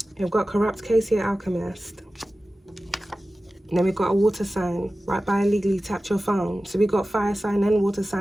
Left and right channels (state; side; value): normal; both; correlation 0.95